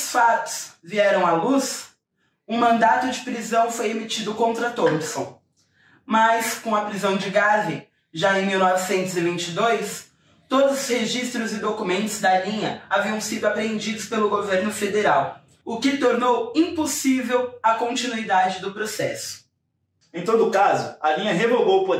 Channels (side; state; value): both; identical; correlation 1.00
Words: fatos vieram à luz, um mandato de prisão foi emitido contra Thompson, mas com a prisão de Garvey, já em 1922, todos os registros e documentos da linha haviam sido apreendidos pelo governo federal, o que tornou impossível a continuidade do processo. Em todo caso, a linha revogou o